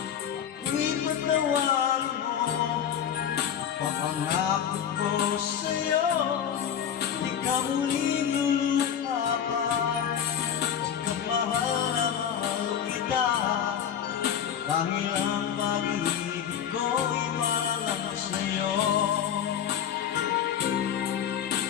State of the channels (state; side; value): quieter; right; 8.8 dB